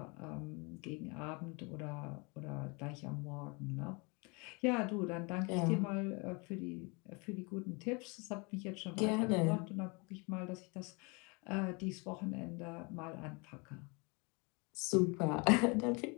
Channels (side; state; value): right; quieter; 30.0 dB